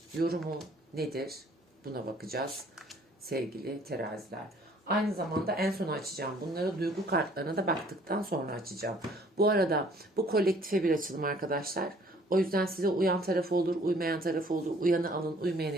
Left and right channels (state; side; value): normal; both; correlation 0.57